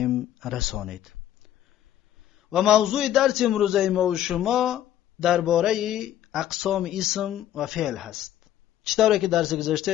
رسانید. و موضوع درس امروز ما و شما درباره اقسام اسم و فعل هست. چطوره که درس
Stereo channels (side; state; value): right; quieter; 11.8 dB